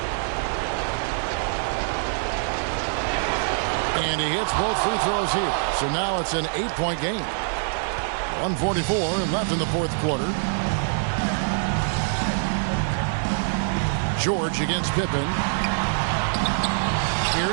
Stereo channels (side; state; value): left; silent; digital silence